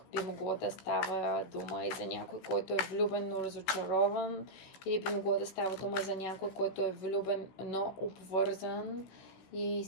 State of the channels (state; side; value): late; right; 16 ms